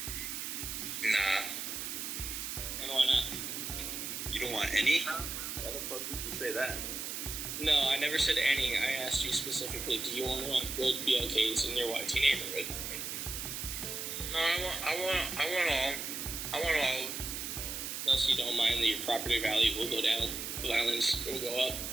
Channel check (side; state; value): right; noise; hiss, 5 dB below the sound